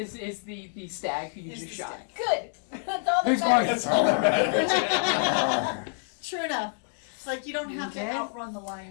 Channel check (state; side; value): silent; right; 60 dB below the other